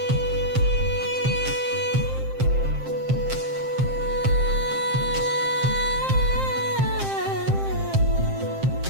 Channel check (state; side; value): late; left; 7.6 ms